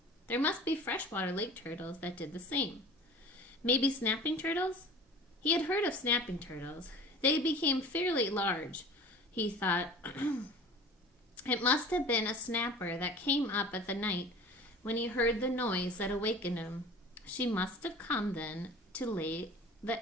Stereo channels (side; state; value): both; normal; correlation 0.41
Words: There must be freshwater lake turtles that did the same. Maybe snapping turtles? He had heard of snapping turtles. They became fairly large, he thought. It must have been a snapper that came up at the night when he heard the noise that awakened him. She must have come then to lay